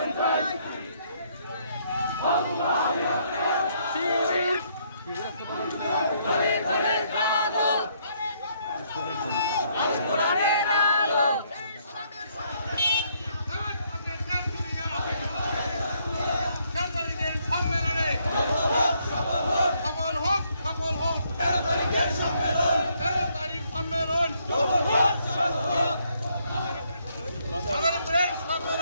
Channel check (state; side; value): inverted; both; correlation -0.71